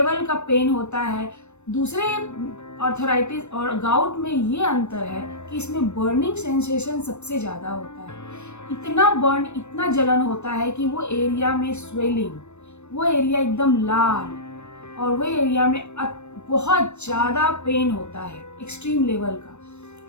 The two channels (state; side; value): late; right; 0.82 ms